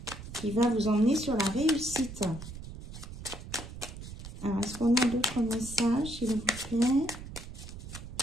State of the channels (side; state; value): right; noise; rumble, 12 dB below the sound